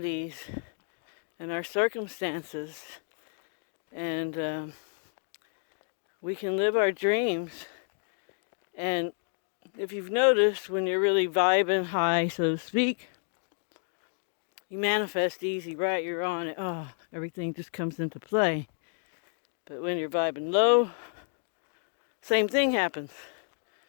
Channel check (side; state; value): right; silent; 57 dB below the other